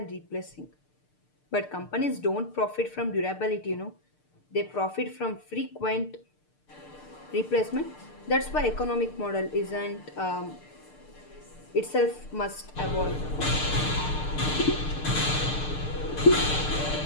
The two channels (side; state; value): right; late; 6.7 ms